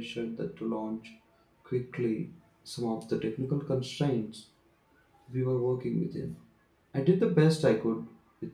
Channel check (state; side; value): identical; both; correlation 1.00